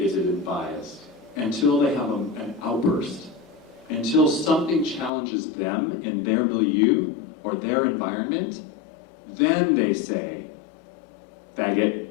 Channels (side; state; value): right; drops out; at 5.1 s